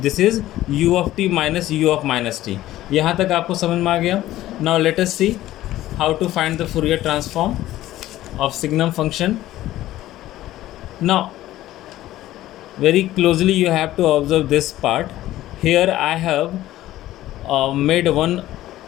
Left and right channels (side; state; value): right; quieter; 14.8 dB